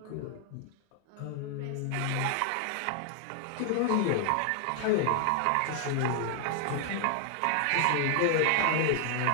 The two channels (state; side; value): different; both; correlation 0.00